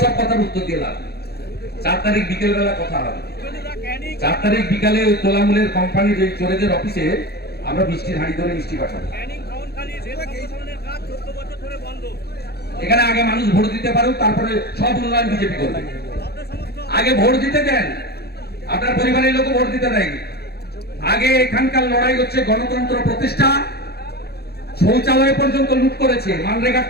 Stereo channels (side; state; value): right; late; 0.46 ms